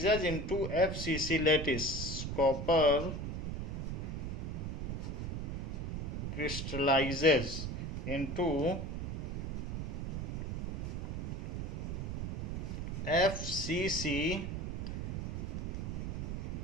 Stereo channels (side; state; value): right; noise; rumble, 3 dB below the sound